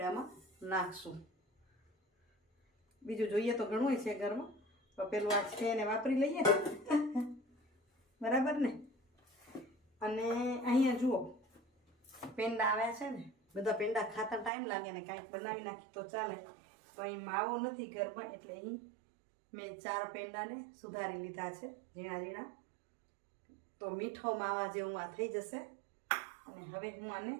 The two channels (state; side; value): drops out; left; at 14.5 s